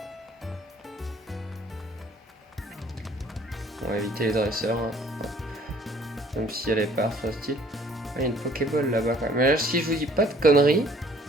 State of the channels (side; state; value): both; normal; correlation 0.57